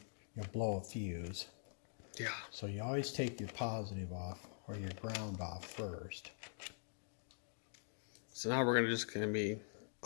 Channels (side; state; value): right; silent; digital silence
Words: you'll blow a fuse. Yeah. So you always take your positive off or your ground off first. So now we're just gonna be